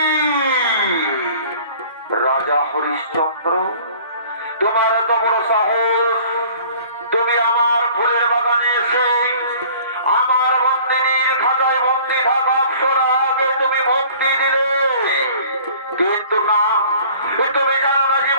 রাজা হরিশ্চন্দ্র, তোমার এত বড় সাহস, তুমি আমার ফুলের বাগানে এসে আমার মন্দিরের খাতায় বন্দি থাকা অপ্সরাকে তুমি মুক্তি দিলে। কিন্তু না, তুমি জানো না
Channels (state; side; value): inverted; both; correlation -0.50